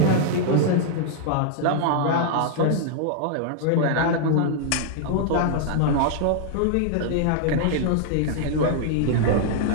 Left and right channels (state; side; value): different; both; correlation -0.01